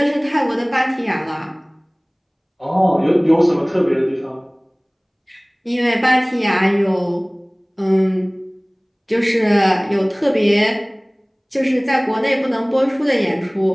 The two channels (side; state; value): both; identical; correlation 1.00